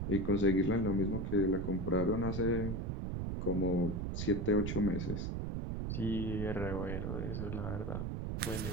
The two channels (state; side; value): noise; right; rumble, 2 dB below the sound